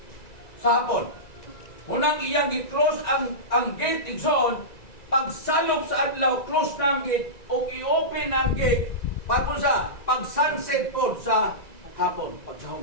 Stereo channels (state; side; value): late; right; 1.9 ms